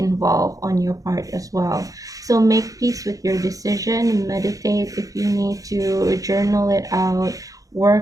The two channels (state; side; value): late; left; 0.17 ms